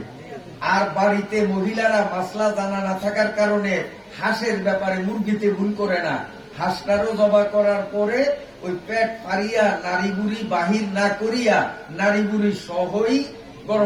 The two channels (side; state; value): both; identical; correlation 1.00